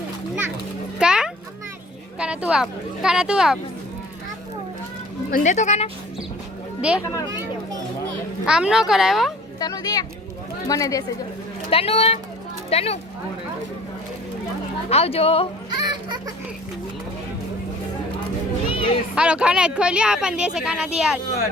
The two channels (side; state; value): both; normal; correlation 0.48